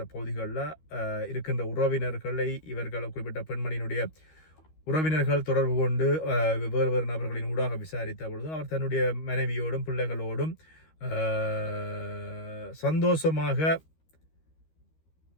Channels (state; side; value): late; right; 13 ms